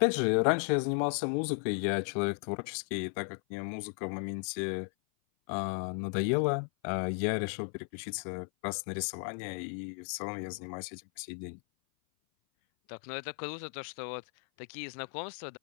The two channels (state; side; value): silent; right; 55 dB below the other